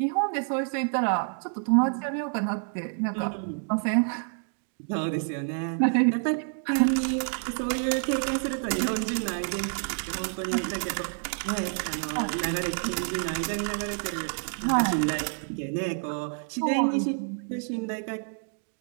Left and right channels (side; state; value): left; silent; 56 dB below the other